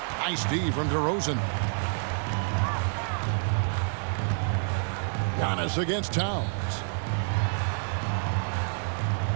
Nice D from DeRozan. Giannis against Towns.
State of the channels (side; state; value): left; silent; 59 dB below the other